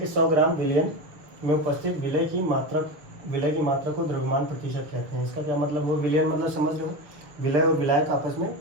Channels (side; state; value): left; late; 6.4 ms